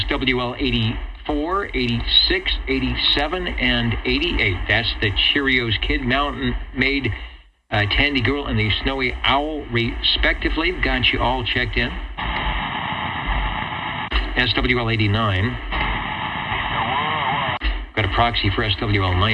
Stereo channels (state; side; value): identical; both; correlation 1.00